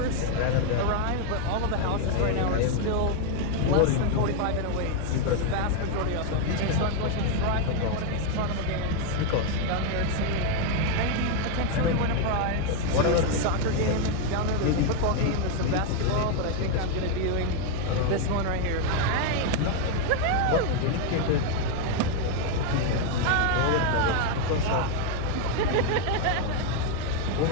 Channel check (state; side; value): different; both; correlation 0.01